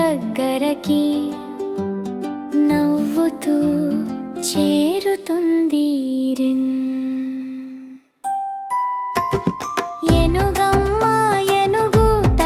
నవ్వుతూ చేరుతుంది ఏనుగమ్మ ఏనుగు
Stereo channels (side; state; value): both; identical; correlation 1.00